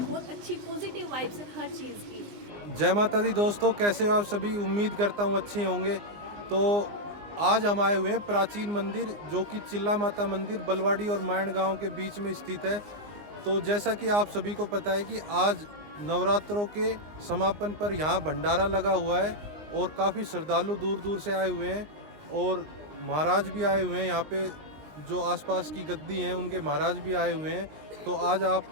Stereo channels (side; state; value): left; late; 20 ms